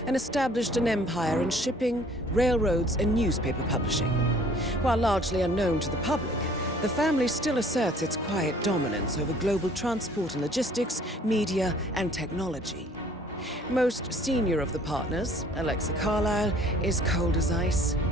and established an empire in shipping, railroads, and newspaper publishing. While largely unknown to the public, the family still asserts its quiet dominance over global transport and logistics, media, and technology. Most senior of the partners, Alexa Carlisle, is cold as ice,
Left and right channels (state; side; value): normal; both; correlation 0.55